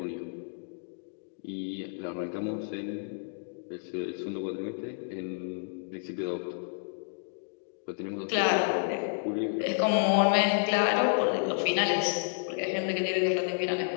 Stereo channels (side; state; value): right; silent; digital silence